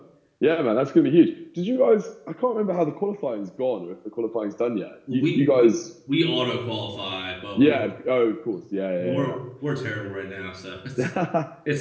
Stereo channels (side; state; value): both; identical; correlation 1.00